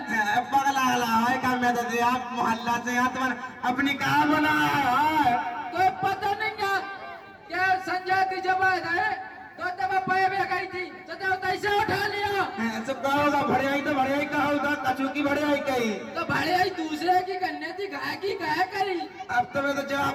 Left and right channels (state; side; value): identical; both; correlation 1.00